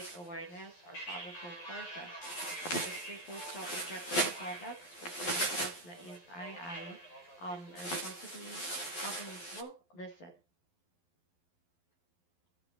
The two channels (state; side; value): late; right; 11 ms